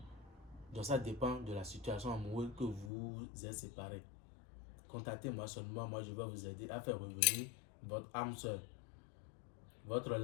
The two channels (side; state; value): right; drops out; at 2.9 s